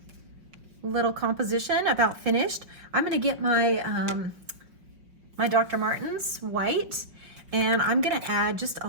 little composition about finished. I'm going to get my my Dr. Martens white, and I'm going to add just a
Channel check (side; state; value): left; late; 5.4 ms